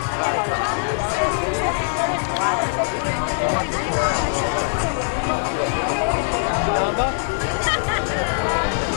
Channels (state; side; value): silent; right; digital silence